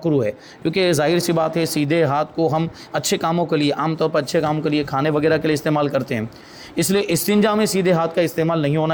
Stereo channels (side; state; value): both; identical; correlation 1.00